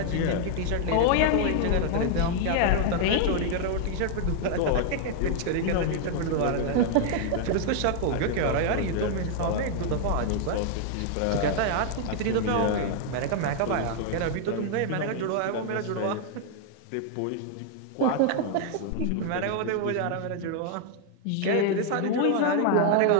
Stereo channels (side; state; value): both; different; correlation 0.00